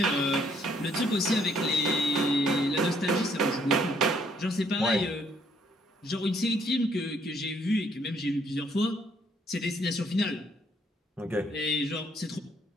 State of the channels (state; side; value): normal; both; correlation 0.67